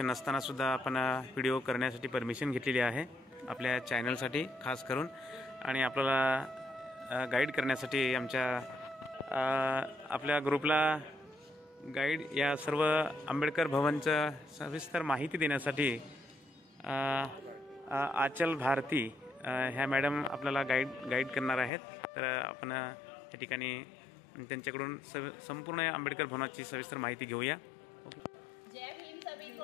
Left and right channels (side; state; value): right; drops out; at 21.7 s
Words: नसताना सुद्धा आपण व्हिडिओ करण्यासाठी परमिशन घेतलेली आहे आपल्या चॅनलसाठी खास करून, आणि आपल्याला गाईड करण्यासाठी आपल्या ग्रुपला गाईड या सर्व आंबेडकर भवनचं सविस्तर माहिती देण्यासाठी आचल भारती ह्या मॅडम आपल्याला गाईड करणार आहेत। तर आपण या ठिकाणी त्यांच्याकडून संपूर्ण आंबेडकर भवनाची सविस्तर माहिती घेऊया। जय भीम सभी